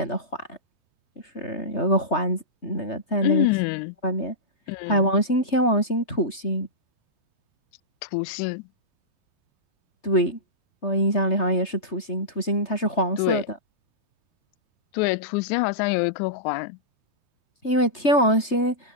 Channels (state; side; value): late; right; 3.3 ms